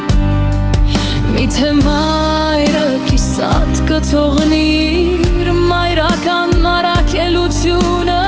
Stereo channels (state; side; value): identical; both; correlation 1.00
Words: միթե մայրը կիսատ կթողնիր մայրական առաքելությունը